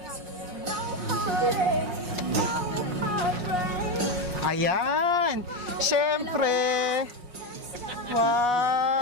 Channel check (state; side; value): late; left; 5.5 ms